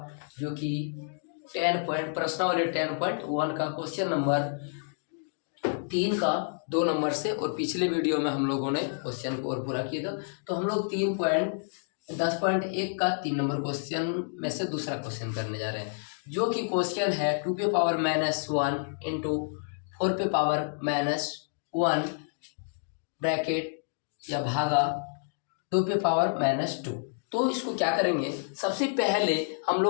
जो कि 10 पॉइंट प्रश्नावली 10.1 का क्वेश्चन नंबर 3 का 2 नंबर से। और पिछले वीडियो में हम लोगों ने क्वेश्चन को और पूरा किया था, तो हम लोग 10.1 का 3 नंबर क्वेश्चन में से दूसरा क्वेश्चन करने जा रहे हैं, जो कि क्वेश्चन है 2⁻⁻1 इंटू 4⁻⁻1 ब्रैकेट या भागा 2⁻⁻2। तो इसको क्या करेंगे, सबसे पहले हम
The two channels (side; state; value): right; silent; digital silence